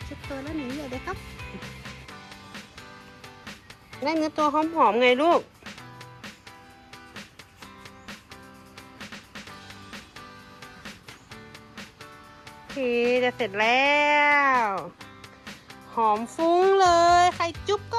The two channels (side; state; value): both; identical; correlation 1.00